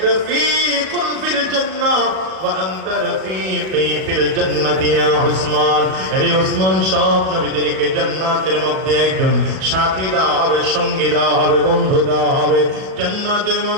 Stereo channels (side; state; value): left; late; 37 ms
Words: রাফীকুন ফিল জান্নাহ ওয়া আনতা রাফীকি ফিল জান্নাতি ইয়া উসমান। আরে উসমান, সব নবীদেরকে জান্নাতের মধ্যে একজন সাথী দেওয়া হবে, সঙ্গী দেওয়া হবে, বন্ধু দেওয়া হবে। জান্নাতের